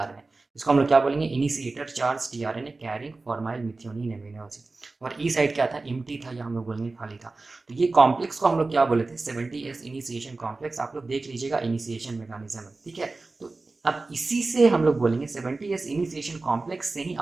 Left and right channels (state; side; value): quieter; left; 3.5 dB